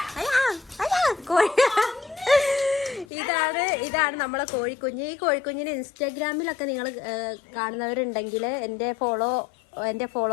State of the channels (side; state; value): right; drops out; at 3.1 s